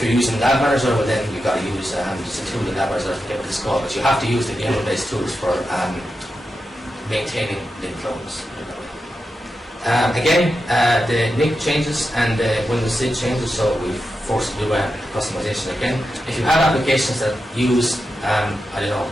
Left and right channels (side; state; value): both; normal; correlation 0.89